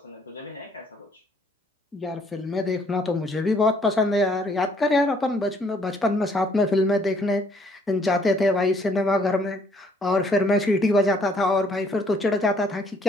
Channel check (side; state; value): both; normal; correlation 0.64